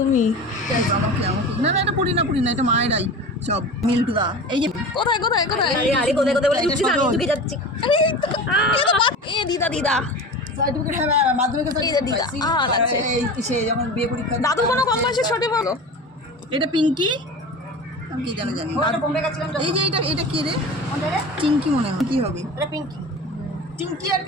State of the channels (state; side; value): normal; both; correlation 0.32